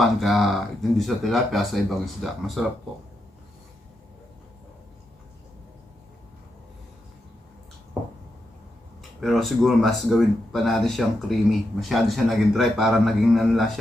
ka hindi sa tilapia sa ibang isda. Masarap po. Pero siguro mas gawin pa natin siyang creamy. Masyado siya naging dry. Parang naging ano lang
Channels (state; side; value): normal; both; correlation 0.85